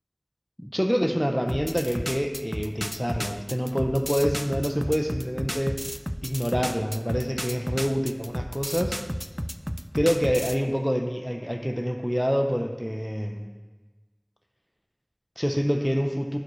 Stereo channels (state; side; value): identical; both; correlation 1.00